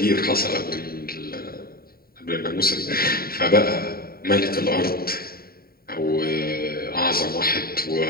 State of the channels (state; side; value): late; right; 0.43 ms